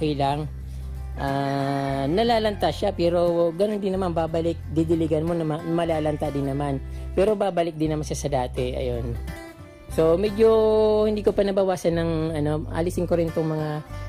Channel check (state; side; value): identical; both; correlation 1.00